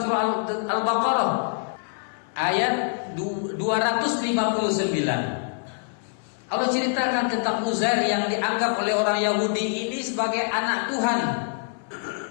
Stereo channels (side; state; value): right; silent; 57 dB below the other